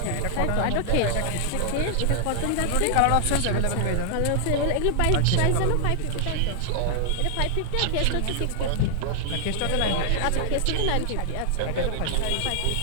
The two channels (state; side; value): different; both; correlation 0.00